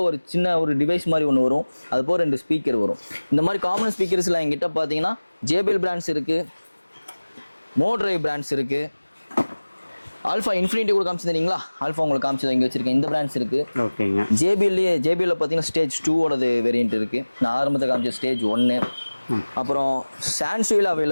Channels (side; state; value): both; inverted; correlation -1.00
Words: சின்ன ஒரு டிவைஸ் மாதிரி ஒன்று வரும், அது போக 2 ஸ்பீக்கர் வரும். இந்த மாதிரி காமன் ஸ்பீக்கர்ஸில் எங்கிட்ட பார்த்தீங்கன்னா JBL பிராண்ட்ஸ் இருக்குது, மோட்ரைவ் பிராண்ட்ஸ் இருக்குது, ஆல்ஃபா இன்ஃபினிட்டி கூட காமிச்சிருந்தீங்களா, ஆல்ஃபா உங்களுக்கு காமிச்சது இங்கே வச்சிருக்கேன். இந்த பிராண்ட்ஸ் இருக்கு. ஓகேங்க. JBL பார்த்தீங்கன்னா ஸ்டேஜ் 2ஓடது வேரியன்ட் இருக்கு. நான் ஆரம்பத்தில் காமிச்ச ஸ்டேஜ் 1. அப்புறம் சான்சுவில்